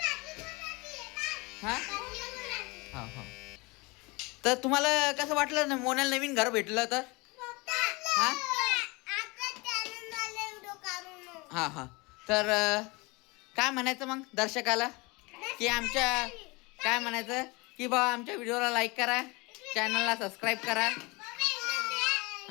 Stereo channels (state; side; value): quieter; right; 25.9 dB